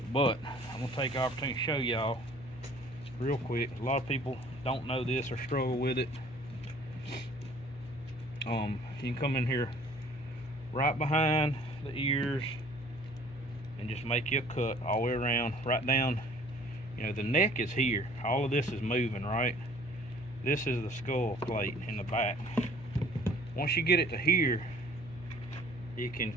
but I'm going to take the opportunity to show y'all real quick. A lot of people don't know this or struggle with it. You can come in here right behind the ears and just make you a cut all the way around, right down. You know, the neck is here. All of this is moving, right? This is the skull plate in the back. Once you get it to here, you can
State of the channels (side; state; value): left; noise; hum, 17 dB below the sound